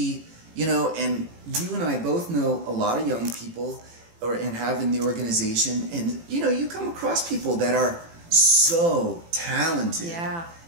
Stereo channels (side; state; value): left; late; 18 ms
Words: and you and I both know a lot of young people and have in the organization, and you come across people that are so talented